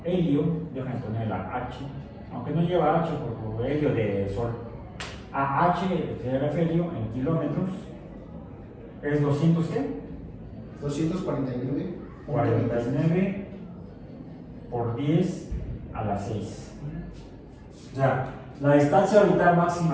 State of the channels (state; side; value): identical; both; correlation 1.00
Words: el helio, déjame poner la H, aunque no lleva H por helio de sol. AH, el afelio en kilómetros, es 200, ¿qué? 249. 49 por 10 a la 6. O sea, la distancia orbital